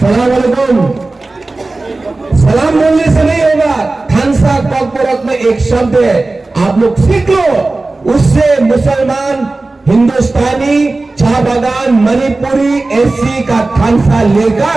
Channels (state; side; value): quieter; left; 3.2 dB